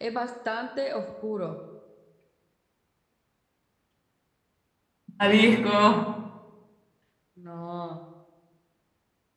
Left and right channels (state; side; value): identical; both; correlation 1.00